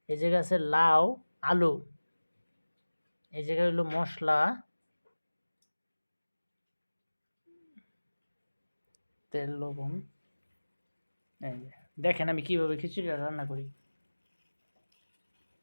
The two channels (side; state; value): both; inverted; correlation -1.00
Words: এই জায়গায় আছে লাউ, আলু, এই জায়গায় হলো মশলা, তেল, লবণ। এই যে দেখেন আমি কিভাবে খিচুড়িটা রান্না করি।